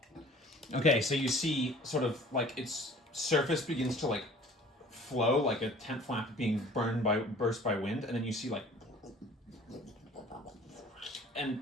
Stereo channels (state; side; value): normal; both; correlation 0.49